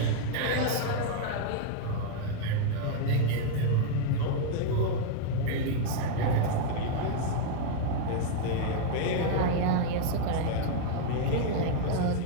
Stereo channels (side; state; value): both; different; correlation 0.00